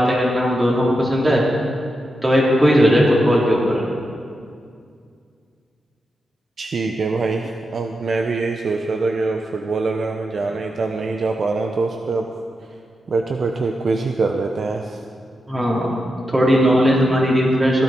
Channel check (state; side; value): normal; both; correlation 0.87